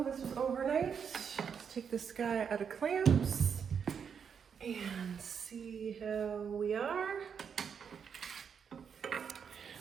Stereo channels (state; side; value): quieter; left; 7.0 dB